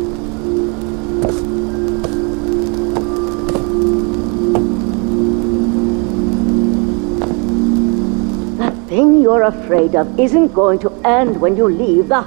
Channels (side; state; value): left; quieter; 33.5 dB